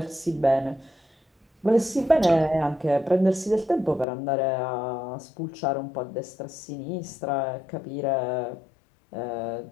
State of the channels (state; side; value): drops out; right; at 4.0 s